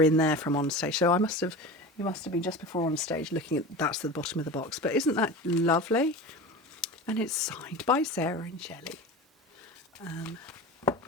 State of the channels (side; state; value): both; normal; correlation 0.31